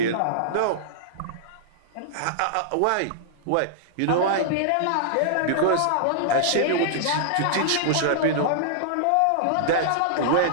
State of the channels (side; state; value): both; different; correlation -0.02